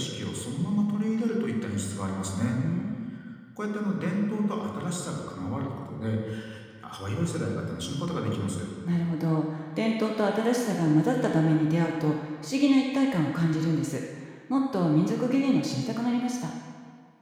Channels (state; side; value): identical; both; correlation 1.00